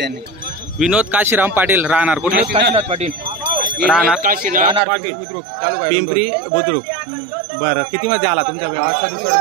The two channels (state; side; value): drops out; left; at 4.8 s